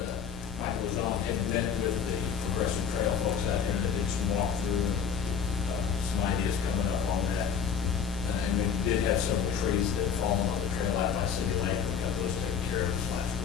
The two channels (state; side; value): quieter; right; 7.1 dB